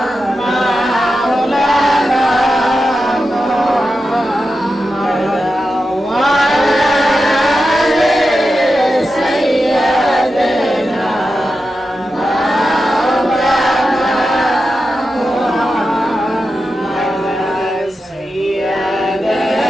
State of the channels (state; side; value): normal; both; correlation 0.90